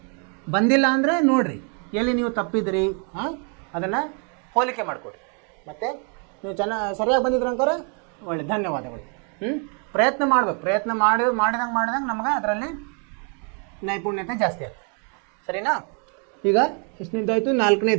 ಬಂದಿಲ್ಲ ಅಂದರೆ ನೋಡಿರಿ ಎಲ್ಲಿ ನೀವು ತಪ್ಪಿದಿರಿ, ಅದನ್ನು ಹೋಲಿಕೆ ಮಾಡಿಕೊಡ್ರಿ. ಮತ್ತು ನೀವು ಸರಿಯಾಗಿ ಬಂದಿದ್ರೆ ಅಂತಾರೆ ಒಳ್ಳೆ ಧನ್ಯವಾದಗಳು. ಪ್ರಯತ್ನ ಮಾಡಬೇಕು, ಪ್ರಯತ್ನ ಮಾಡಿದಂಗೆ ನಮಗೆ ಅದರಲ್ಲಿ ನೈಪುಣ್ಯತೆ ಜಾಸ್ತಿ ಆಗ್ತದೆ. ಸರಿನಾ? ಈಗ ಎಷ್ಟನೇದಾಯಿತು,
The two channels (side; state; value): left; quieter; 39.8 dB